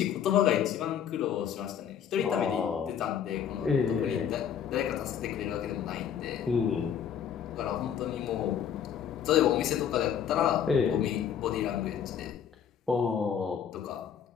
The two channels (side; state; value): right; quieter; 8.5 dB